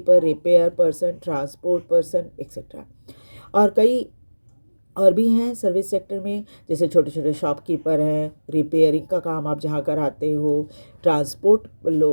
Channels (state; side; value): inverted; both; correlation -1.00